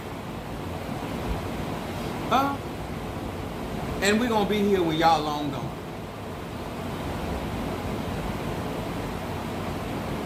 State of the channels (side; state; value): both; identical; correlation 1.00